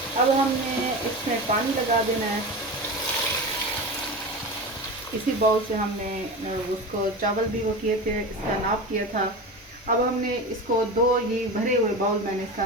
अब हमने इसमें पानी लगा देना है। इसी बाउल से हमने उसको चावल भी वो किए थे, इसका नाप किया था। अब हमने इसको 2 ये भरे हुए बाउल, मैंने इसका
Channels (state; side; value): normal; both; correlation 0.27